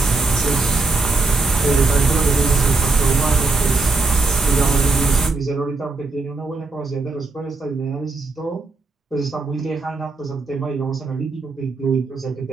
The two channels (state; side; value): quieter; left; 3.8 dB